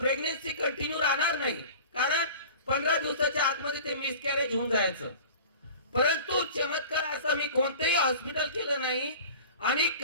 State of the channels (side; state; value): both; inverted; correlation -0.40